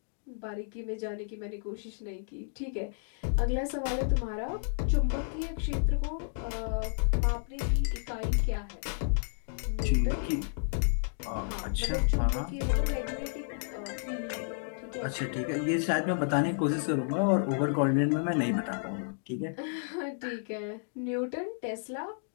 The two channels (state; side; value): silent; right; digital silence